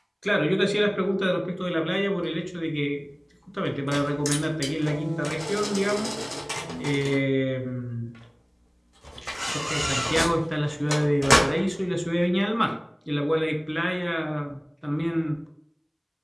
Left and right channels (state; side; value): identical; both; correlation 1.00